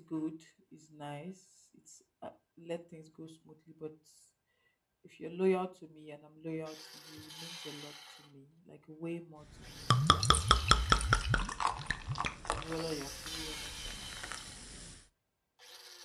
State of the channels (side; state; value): both; identical; correlation 1.00